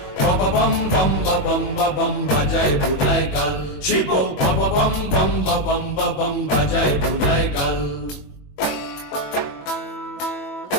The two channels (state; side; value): late; right; 21 ms